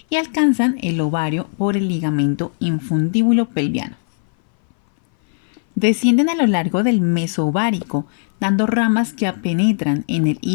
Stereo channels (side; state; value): right; silent; 60 dB below the other